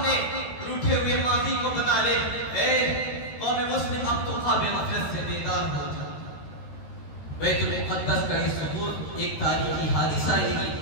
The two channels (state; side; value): late; right; 13 ms